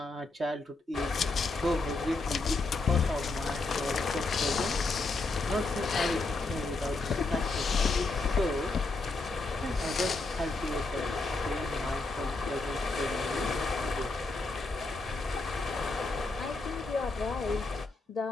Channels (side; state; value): right; quieter; 3.4 dB